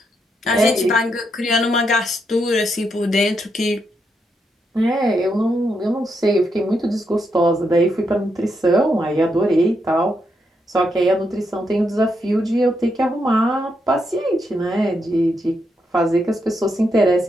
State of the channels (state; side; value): normal; both; correlation 0.81